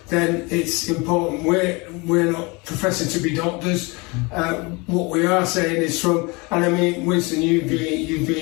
then it's important. We're not professing to be doctors. What we are saying is from, and I mean, Winston, you've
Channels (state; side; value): quieter; right; 27.2 dB